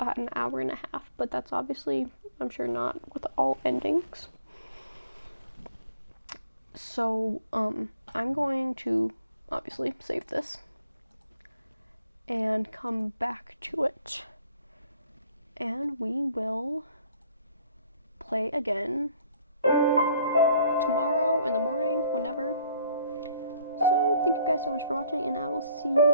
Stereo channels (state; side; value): inverted; both; correlation -0.62